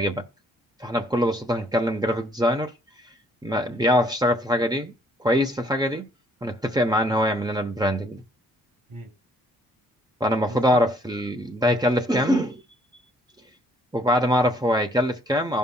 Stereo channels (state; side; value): normal; both; correlation 0.63